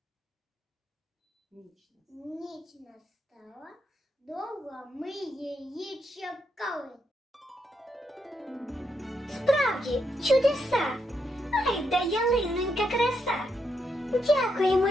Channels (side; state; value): both; normal; correlation 0.80